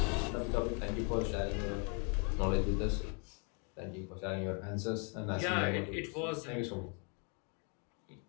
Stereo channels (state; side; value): quieter; right; 37.0 dB